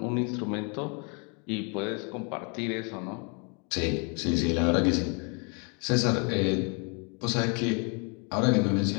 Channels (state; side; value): quieter; right; 35.4 dB